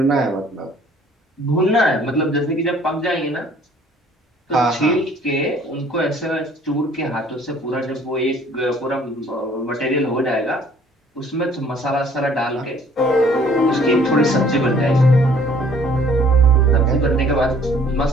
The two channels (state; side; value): normal; both; correlation 0.57